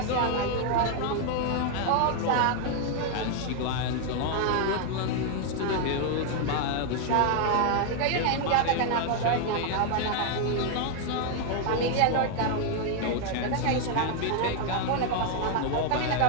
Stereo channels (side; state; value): both; different; correlation 0.00